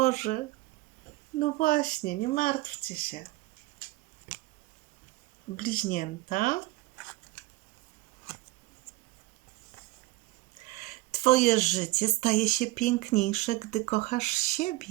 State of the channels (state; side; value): quieter; left; 19.6 dB